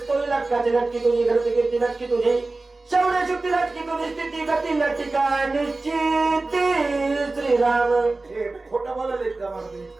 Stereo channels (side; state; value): left; quieter; 3.3 dB